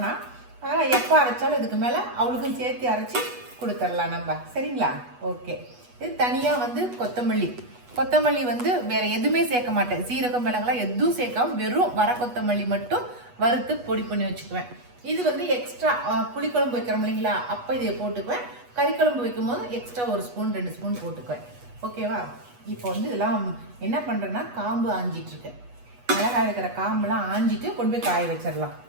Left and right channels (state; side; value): late; left; 8.2 ms